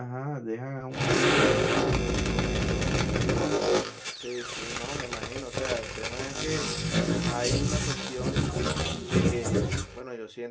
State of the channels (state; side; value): identical; both; correlation 1.00